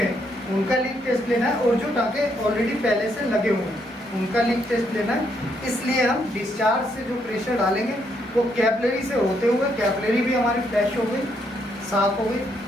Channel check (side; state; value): both; normal; correlation 0.75